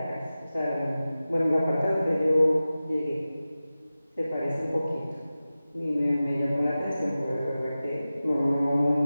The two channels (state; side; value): inverted; both; correlation -0.95